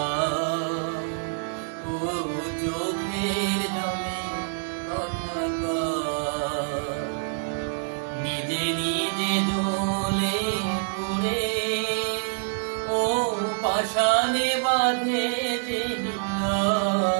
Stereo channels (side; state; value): left; silent; 61 dB below the other